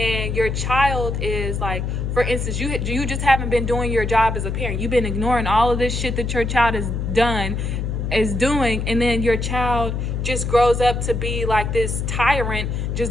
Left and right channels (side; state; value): left; noise; hum, 2 dB below the sound